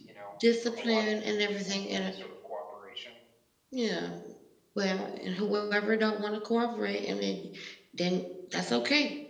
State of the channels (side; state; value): both; identical; correlation 1.00